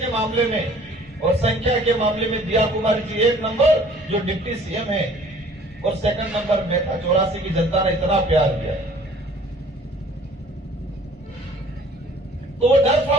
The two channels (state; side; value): normal; both; correlation 0.53